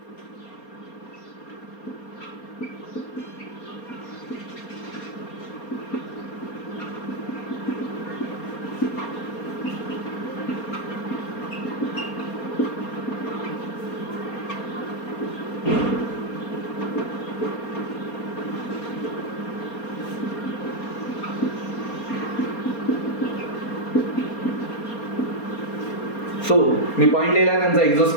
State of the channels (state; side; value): late; right; 4.3 ms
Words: So मी point लिहिला, त्यांचं